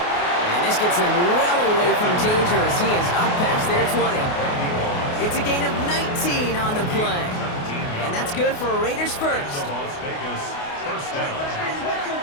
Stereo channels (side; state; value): right; late; 28 ms